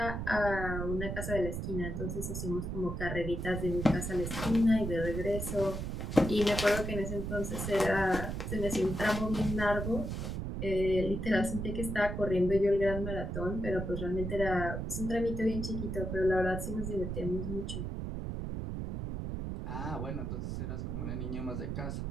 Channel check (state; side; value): noise; right; rumble, 4 dB below the sound